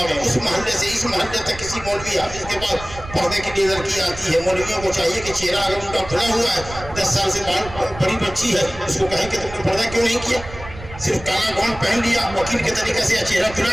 اس محلے سے اس محلے تک کسی مولوی حافظ کے پاس پردے کے لیے لڑکی آتی ہے، مولویوں کو چاہیے کہ چہرہ اگر ان کا کھلا ہوا ہے، 10 سال سے بڑی بچی ہے، اس کو کہیں کہ تم نے پردہ کیوں نہیں کیا، صرف کالا گون پہن لیا وکیل کے طریقے سے، یا چہرہ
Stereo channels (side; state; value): right; noise; rumble, 14 dB below the sound